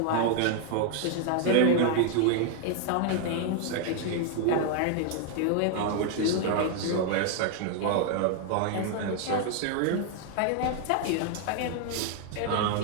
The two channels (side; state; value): both; different; correlation 0.00